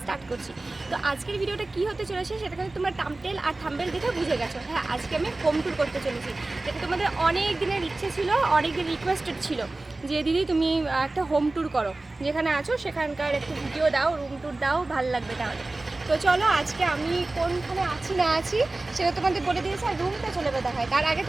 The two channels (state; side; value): quieter; left; 3.0 dB